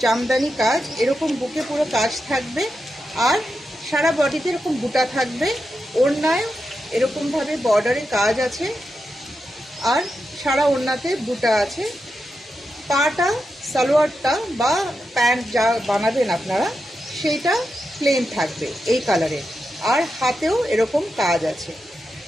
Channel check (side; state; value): both; normal; correlation 0.88